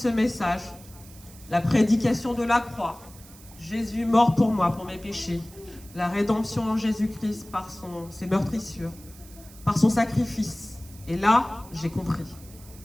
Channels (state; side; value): noise; right; hiss, 21 dB below the sound